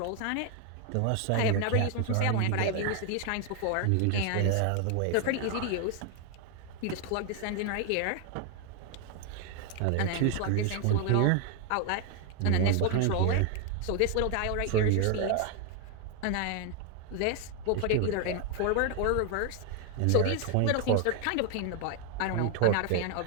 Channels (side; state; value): both; different; correlation 0.00